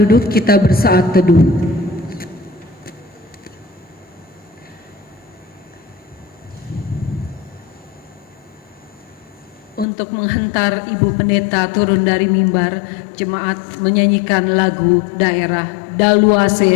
duduk, kita bersaat teduh. Untuk menghantar Ibu Pendeta turun dari mimbar, jemaat menyanyikan lagu daerah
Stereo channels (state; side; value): drops out; right; at 9.9 s